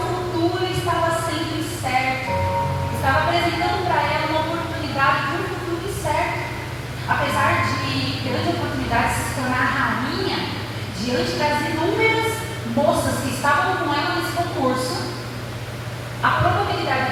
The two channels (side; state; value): both; identical; correlation 1.00